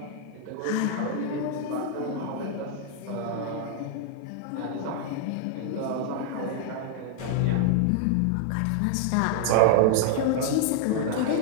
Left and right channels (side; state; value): both; different; correlation 0.00